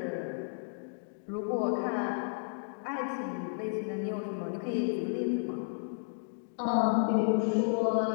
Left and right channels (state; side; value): silent; right; digital silence